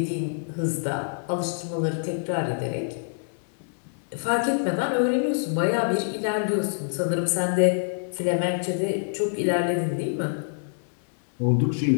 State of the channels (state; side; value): silent; right; digital silence